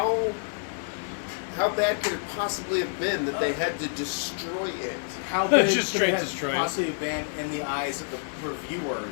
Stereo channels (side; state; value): right; silent; digital silence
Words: bad could it possibly have been that they had to destroy it? How big Just could straight it destroy it. have possibly been in the eyes of the